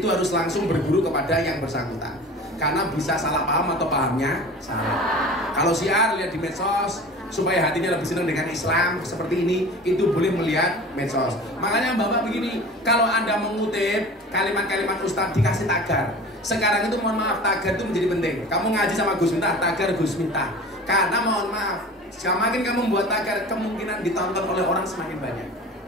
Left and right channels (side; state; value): both; normal; correlation 0.38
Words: harus langsung berguru kepada yang bersangkutan, karena bisa salah paham atau pahamnya salah. Kalau syiar lihat di medsos, supaya hatinya lebih senang dengan Islam seperti ini, itu boleh melihat medsos. Makanya Bapak begini, kalau Anda mengutip kalimat-kalimat Ustadz dikasih tagar. Sekarang itu mohon maaf, tagar itu menjadi penting. Kamu ngaji sama Gus Miftah, tagar Gus Miftah. Karena mohon maaf, semakin kamu membuat tagar, kemungkinan ditonton oleh orang semakin banyak.